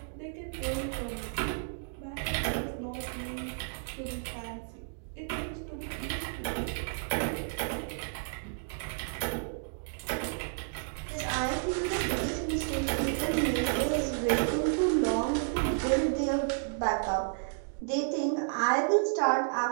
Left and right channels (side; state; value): left; silent; digital silence